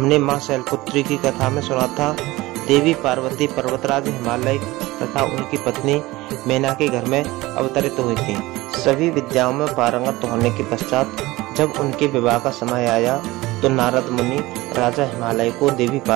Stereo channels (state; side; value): quieter; left; 19.6 dB